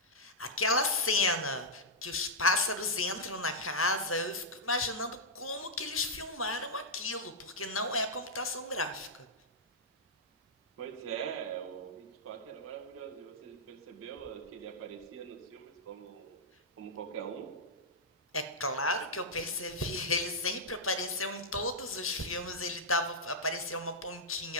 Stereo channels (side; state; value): both; normal; correlation -0.07